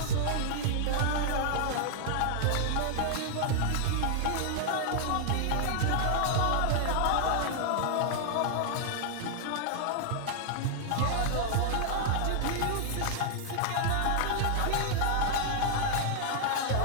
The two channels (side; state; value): both; different; correlation -0.01